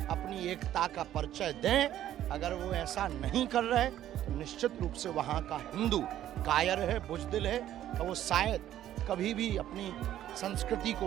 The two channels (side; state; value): left; quieter; 12.1 dB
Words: अपनी एकता का परिचय दें। अगर वो ऐसा नहीं कर रहे तो निश्चित रूप से वहाँ का हिंदू कायर है, बुजदिल है, तो वो शायद कभी भी अपनी संस्कृति को